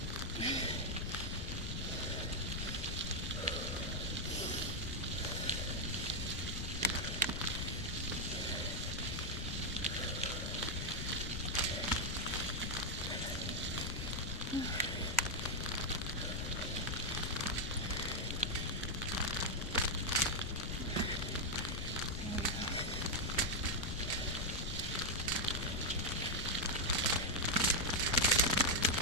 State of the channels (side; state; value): left; noise; rumble, 3 dB below the sound